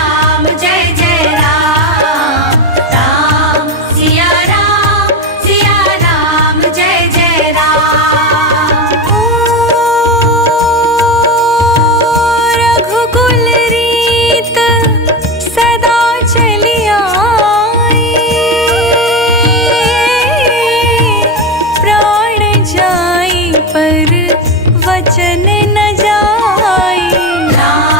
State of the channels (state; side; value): normal; both; correlation 0.16